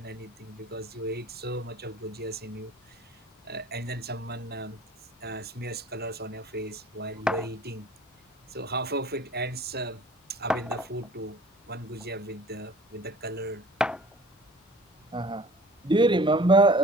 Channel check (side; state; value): both; normal; correlation 0.47